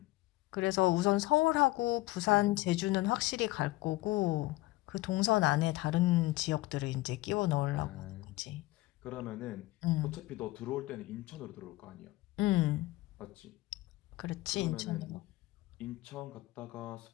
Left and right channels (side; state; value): right; quieter; 19.0 dB